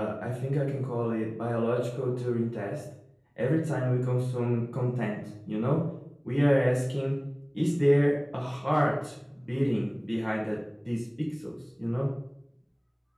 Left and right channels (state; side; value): identical; both; correlation 1.00